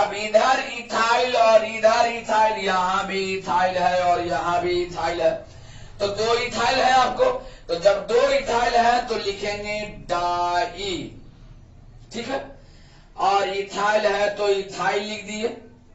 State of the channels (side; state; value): both; identical; correlation 1.00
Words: इधर इथाइल और इधर इथाइल, यहां भी इथाइल है और यहां भी इथाइल है, तो 2 इथाइल है आपको। तो जब 2 इथाइल है तो लिखेंगे डाई, ठीक है। और इथाइल है तो इथाइल लिख दिए,